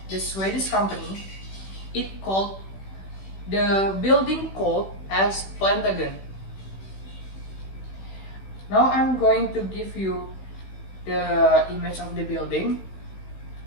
the Swedish company, it called the building called as Plantagen. Now I'm going to give you the image of the building.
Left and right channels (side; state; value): right; late; 16 ms